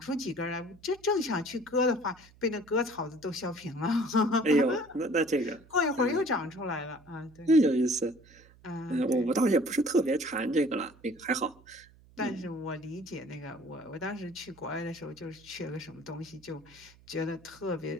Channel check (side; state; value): right; noise; hum, 26 dB below the sound